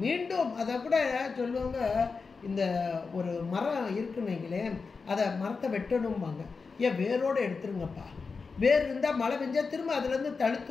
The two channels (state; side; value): quieter; right; 4.7 dB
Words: மீண்டும் அதை கூட சொல்லுவாங்க, இந்த ஒரு மரம் இருக்குன்னீங்களே, அதை மரத்தை வெட்டணும்பாங்க. ஏன் வேரோடு எடுத்துருங்கப்பா, வேர் இருந்தால் மழை பெஞ்சா திரும்ப அதுலேருந்து